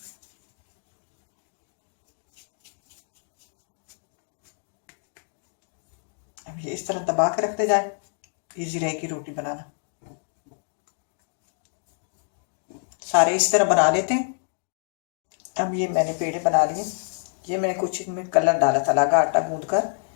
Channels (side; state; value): right; silent; 60 dB below the other